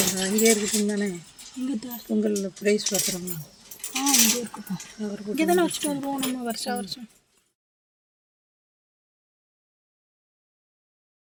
அங்கேயே இருக்குதுங்க தானே. பொங்கல் ப்ரைஸ் பாத்திரம்லாம் இங்கே இருக்குப்பா. இங்கே தானே வச்சுட்டு வருவோம் நம்ம வருஷம் வருஷம்.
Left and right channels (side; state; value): both; identical; correlation 1.00